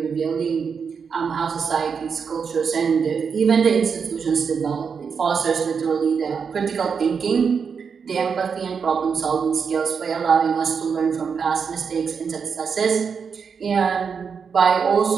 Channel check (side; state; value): left; quieter; 6.1 dB